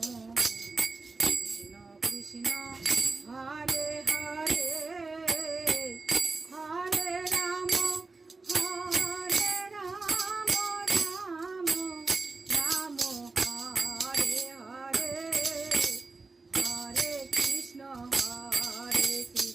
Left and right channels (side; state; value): left; quieter; 3.8 dB